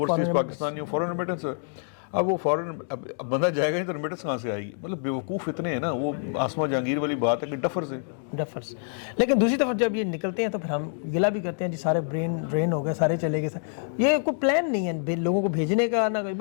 پاکستانی فورن ریمیٹنس ہے. اب وہ فورن بندہ جائے گا نہیں تو ریمیٹنس کہاں سے آئے گی؟ مطلب بیوقوف اتنے ہیں نا, وہ آسما جہانگیر والی بات ہے کہ ڈفرز ہیں. لیکن دوسری طرف جب یہ نکلتے ہیں تو پھر ہم گلا بھی کرتے ہیں جی سارے برین ہو گئے, سارے چلے گئے. یہ کوئی پلان نہیں ہے لوگوں کو بھیجنے کا, نہ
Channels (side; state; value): right; silent; digital silence